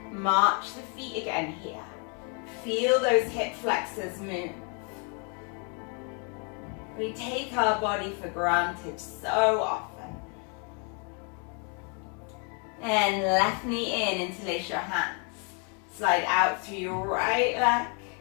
March the feet again here. Feel those hip flexors move. We take our body for granted so often. And left knee in, interlace your hands. Slide out through your right leg.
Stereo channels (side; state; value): right; quieter; 37.7 dB